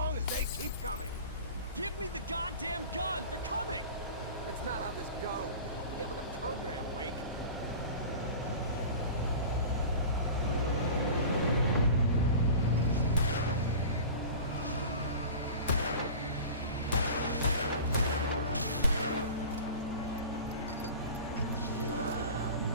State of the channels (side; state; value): both; inverted; correlation -0.36